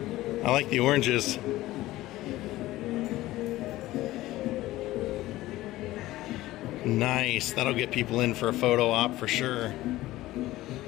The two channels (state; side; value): quieter; right; 16.7 dB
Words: I like the oranges. Nice. That'll get people in for a photo op for sure.